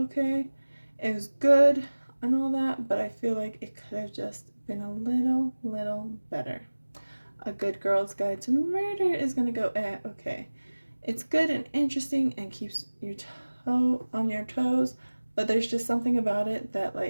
It was good and all that, but I feel like it could have just been a little better. A Good Girl's Guide to Murder is going to go okay. It's good and interesting and keeps your toe on your toes, but there's just something about it that,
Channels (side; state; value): both; inverted; correlation -1.00